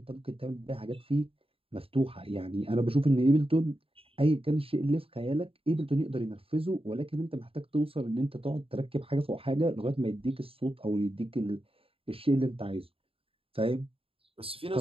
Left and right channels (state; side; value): late; left; 0.27 ms